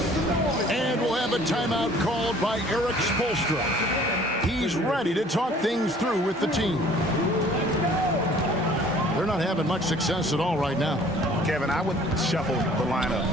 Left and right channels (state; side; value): normal; both; correlation 0.54